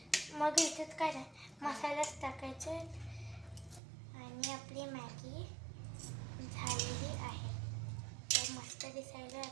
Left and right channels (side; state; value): left; drops out; at 3.8 s